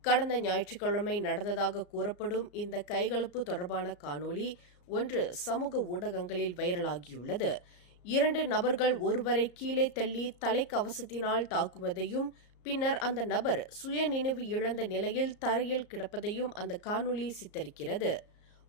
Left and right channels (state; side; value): late; right; 34 ms